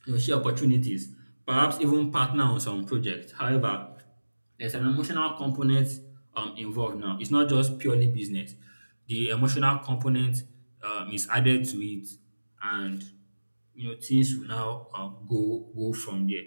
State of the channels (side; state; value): both; inverted; correlation -1.00